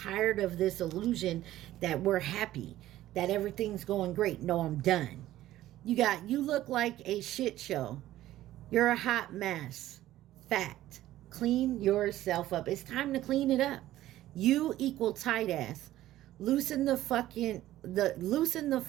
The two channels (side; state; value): left; quieter; 14.4 dB